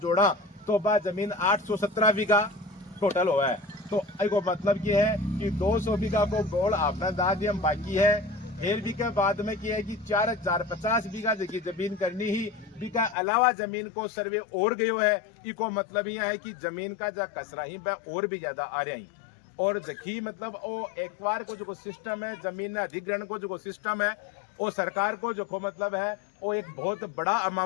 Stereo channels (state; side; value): drops out; right; at 13.2 s